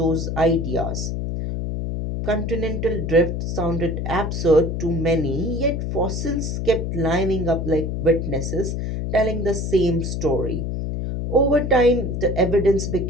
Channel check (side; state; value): left; noise; hum, 3 dB below the sound